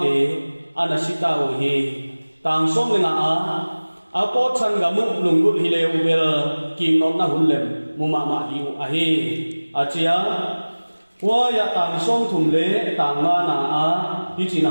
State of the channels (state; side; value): inverted; both; correlation -1.00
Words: te anasita wa hi tang som le nga a po chan ga mu lunggut hi le ubel king not na hullem muma ma di u a hi achia wa ya tang som thum le tang na na a hi chin